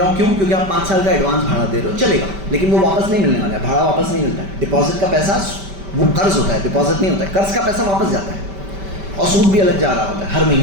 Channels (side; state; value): left; late; 5.1 ms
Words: ہوں. کیوں؟ کیونکہ آپ 5 سال کا ایڈوانس بھاڑا دے رہے ہو، چلے گا. لیکن وہ واپس نہیں ملنے والا ہے، بھاڑا واپس نہیں ملتا ہے. ڈپازٹ کا پیسہ وہ قرض ہوتا ہے، ڈپازٹ نہیں ہوتا ہے. قرض کا پیسہ واپس جاتا ہے اور سود بھی الگ جا رہا ہوتا ہے ہر